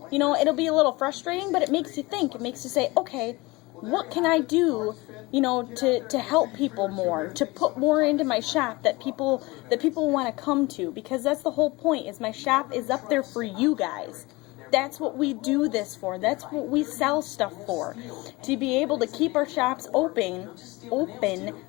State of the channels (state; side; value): quieter; right; 22.8 dB